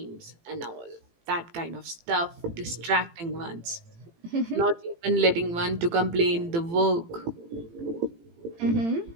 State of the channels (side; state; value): left; late; 18 ms